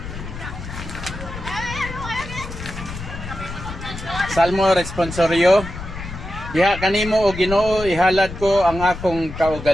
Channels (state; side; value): noise; left; rumble, 10 dB below the sound